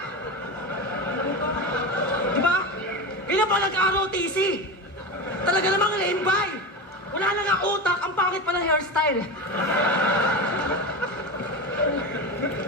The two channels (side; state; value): both; normal; correlation 0.22